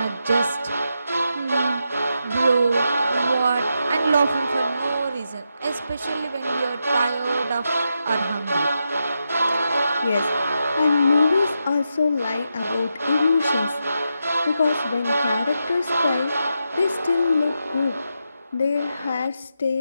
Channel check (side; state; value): both; inverted; correlation -0.85